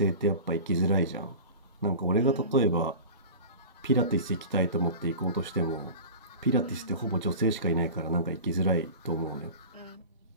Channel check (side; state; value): both; inverted; correlation -0.34